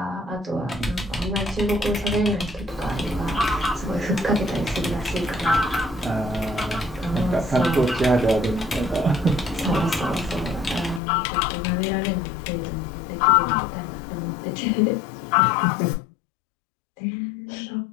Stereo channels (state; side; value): drops out; right; at 11.0 s